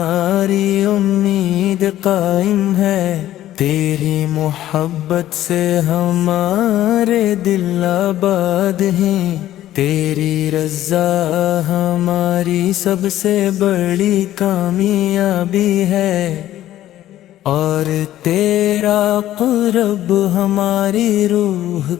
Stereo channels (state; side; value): quieter; right; 13.3 dB